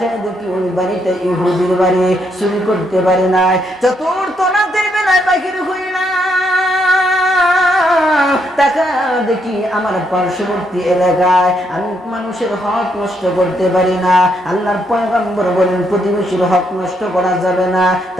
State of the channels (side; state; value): both; normal; correlation 0.76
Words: দেখি ওই বাড়িটা ইহুদির বাড়ি, চুরি করতে পারি নাই। চতুর্থ রাতের বেলায় বাহির হইলাম তাকা দেখি আমার পার্শ্ববর্তী এলাকায় আমি মানুষের হক নষ্ট করতে পারি না। আল্লাহর পয়গম্বর বলেন প্রতিবেশীর হক নষ্ট করা যাবে না,